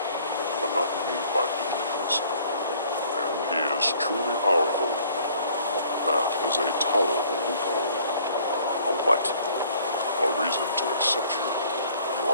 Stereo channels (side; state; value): both; inverted; correlation -0.56